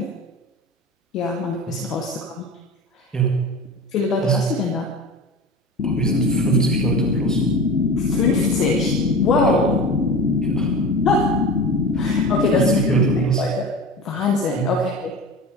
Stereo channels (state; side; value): normal; both; correlation 0.32